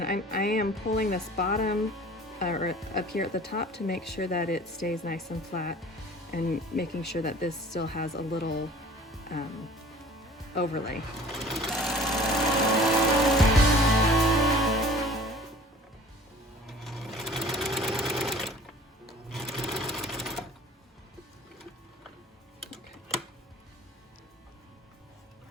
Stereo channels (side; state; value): both; normal; correlation 0.47